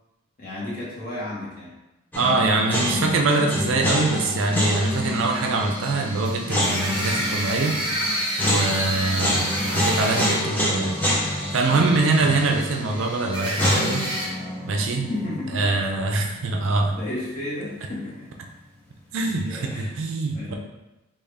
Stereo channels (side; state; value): both; normal; correlation 0.38